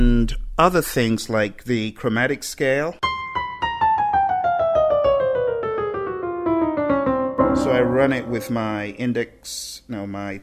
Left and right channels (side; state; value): both; identical; correlation 1.00